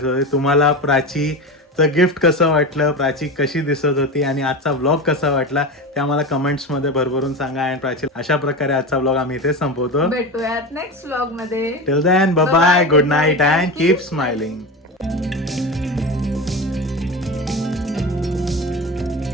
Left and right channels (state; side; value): normal; both; correlation 0.24